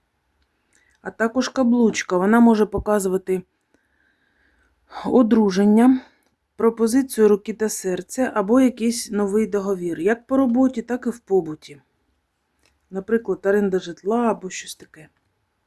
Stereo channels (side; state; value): both; identical; correlation 1.00